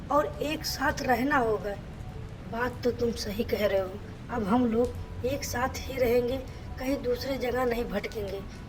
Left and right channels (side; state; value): both; identical; correlation 1.00